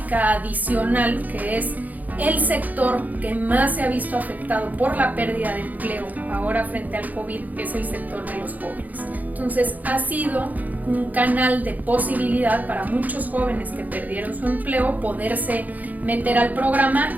adicional, que es el sector que más se ha visto afectado por la pérdida de empleo ahora frente al COVID, es el sector de los jóvenes. Entonces ha sido un canal de posibilidad para muchos jóvenes que perdieron su empleo poderse meter al programa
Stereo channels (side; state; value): left; late; 0.080 ms